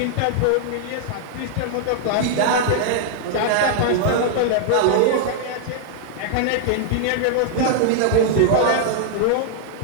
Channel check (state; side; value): different; both; correlation -0.01